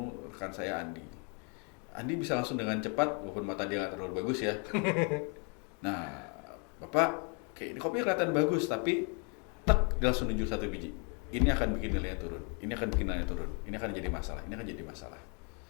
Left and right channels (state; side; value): quieter; right; 36.4 dB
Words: rekan saya Andi. Andi bisa langsung dengan cepat, walaupun mata dia nggak terlalu bagus ya. Nah, Bapak, kayak ini kopinya kelihatan bagus, tapi dia langsung nunjuk 1 biji. Ini akan bikin nilainya turun. Ini akan bikin nilainya turun. Ini akan jadi masalah. Ini akan jadi masalah.